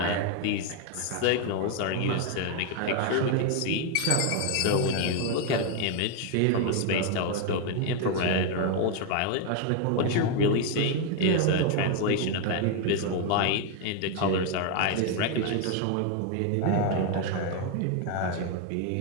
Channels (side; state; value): both; different; correlation 0.01